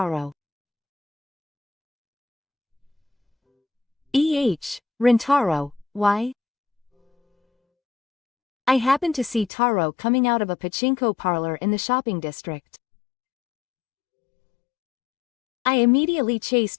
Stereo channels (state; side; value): drops out; right; at 9.5 s